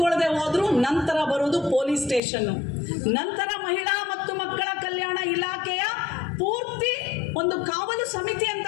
ಹೋದ್ರು ನಂತರ ಬರೋದು ಪೊಲೀಸ್ ಸ್ಟೇಷನ್, ನಂತರ ಮಹಿಳಾ ಮತ್ತು ಮಕ್ಕಳ ಕಲ್ಯಾಣ ಇಲಾಖೆಯ ಪೂರ್ತಿ ಒಂದು ಕಾವಲು ಸಮಿತಿ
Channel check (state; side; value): drops out; right; at 2.2 s